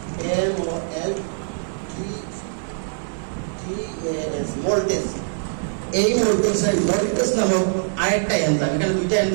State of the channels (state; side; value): silent; left; 56 dB below the other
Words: মোল্টেজ। এই মোল্টেজ নামক আরেকটা এনজাইম, এখানে দুইটা